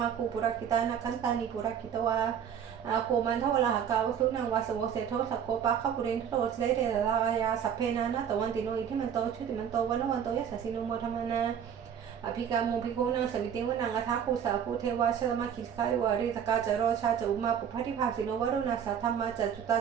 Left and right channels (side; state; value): left; quieter; 8.4 dB